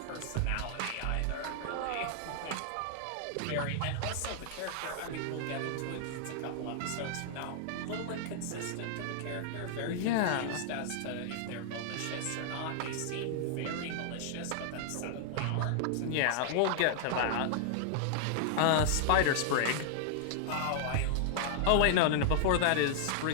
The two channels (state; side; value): different; both; correlation -0.01